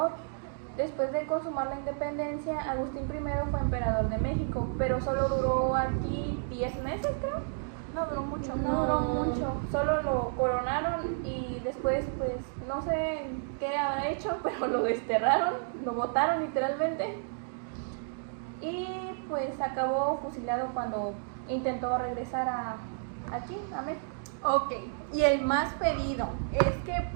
Después de consumar la independencia, Agustín I fue emperador de México, pero solo duró aquí 10 meses, creo. No duró mucho. No duró mucho, solo lo coronaron y después, pues, no sé qué habrá hecho, pero lo desterraron, lo botaron literalmente. Y pues acabó fusilado cuando intentó regresar aquí, a México. Ok, y el más pedido es que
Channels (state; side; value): silent; left; digital silence